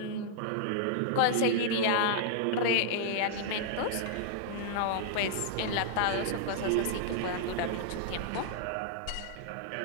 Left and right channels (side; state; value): both; different; correlation -0.01